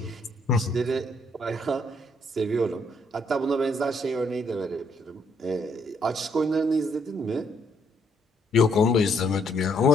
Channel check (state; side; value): normal; both; correlation 0.70